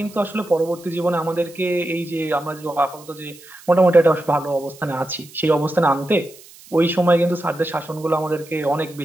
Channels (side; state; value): right; noise; hiss, 22 dB below the sound